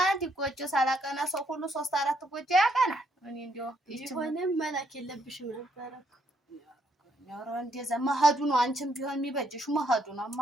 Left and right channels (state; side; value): normal; both; correlation 0.72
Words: ጎጆ ሳላቀና ሰው ሁሉ 3-4 ጎጆ ያቀናል። እኔ እንደው ቢሆንም መላክ የለብሽም ነበረ። ኧረ እንደዛ መሄዱ ነው። አንቺም ቢሆን የሚበጅሽ መሄዱ ነው።